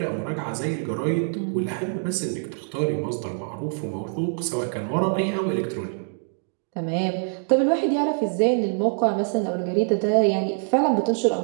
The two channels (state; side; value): silent; left; 62 dB below the other